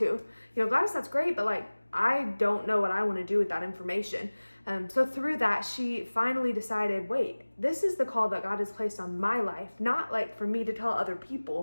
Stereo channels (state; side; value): inverted; both; correlation -1.00